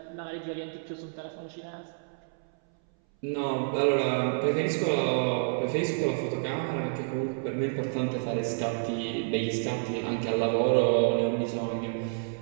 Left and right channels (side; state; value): left; silent; 58 dB below the other